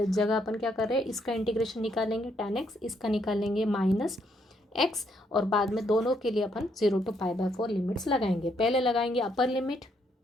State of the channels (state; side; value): normal; both; correlation 0.73